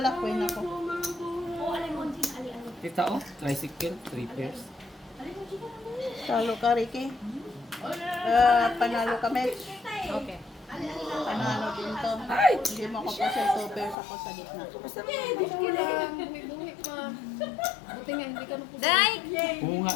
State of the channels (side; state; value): right; drops out; at 14.0 s